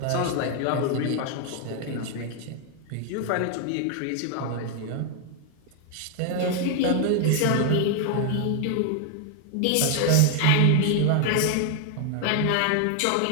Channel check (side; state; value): both; different; correlation 0.00